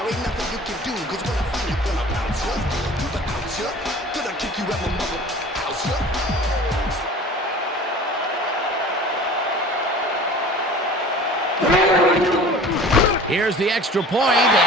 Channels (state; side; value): normal; both; correlation 0.42